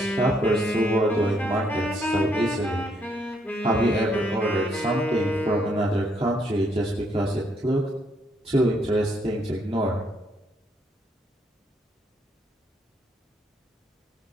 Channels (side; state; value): both; normal; correlation 0.72